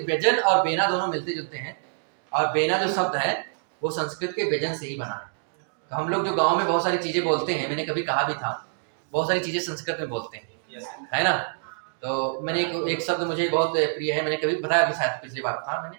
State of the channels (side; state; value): left; silent; digital silence